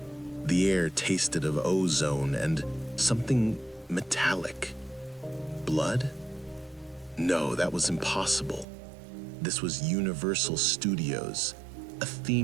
The air tasted of ozone and something metallic. Blood? No, that was impossible. This was Universal Studios, a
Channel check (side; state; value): left; drops out; at 8.7 s